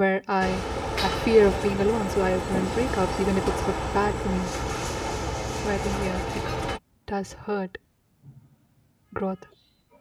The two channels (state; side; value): identical; both; correlation 1.00